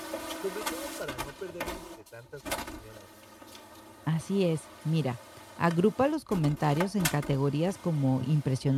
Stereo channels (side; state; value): both; identical; correlation 1.00